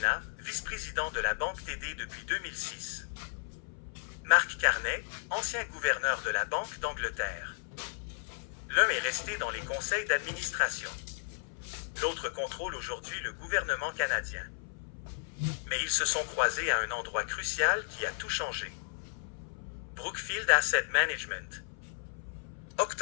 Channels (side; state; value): right; silent; 55 dB below the other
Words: vice-président de la Banque TD depuis 2006. Mark Carney, ancien gouverneur de la Banque d'Angleterre. L'un est resté dans les conseils d'administration. L'autre contrôle aujourd'hui le gouvernement canadien. Mais ils se sont croisés à un endroit crucial qui a tout changé. Brookfield Asset Management.